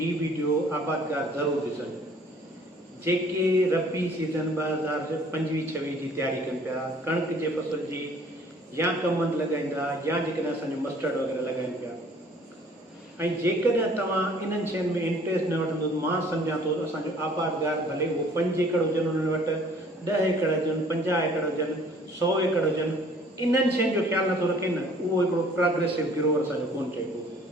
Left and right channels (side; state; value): both; normal; correlation 0.55